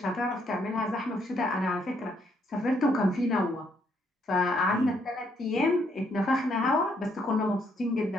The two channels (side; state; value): both; normal; correlation 0.72